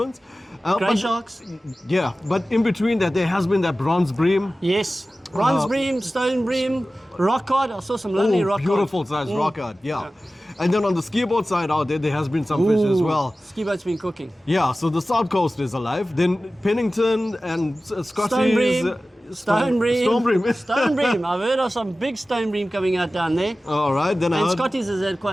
Grey But- sharks. Yeah, but in between that, there has been that bronze bream. Yes. Bronze bream, stone bream, rock cod. I saw some lovely rock cod. Beautiful size rock cod, yeah. And then on the ski boat side out there, there has been some fish as well. Ski boat's been cooking. Yeah, so the South Coast is alive. Then Pennington and Scotties. Stone bream. Stone bream. Stone bream. Stone bream. I've heard of some big stone bream coming out down there. All right, then I And heard. Scotties has had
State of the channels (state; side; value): normal; both; correlation 0.96